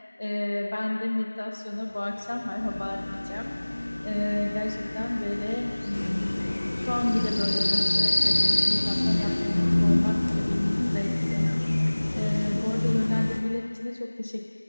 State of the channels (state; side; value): inverted; both; correlation -1.00